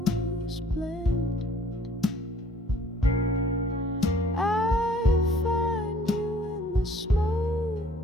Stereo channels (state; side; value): normal; both; correlation 0.56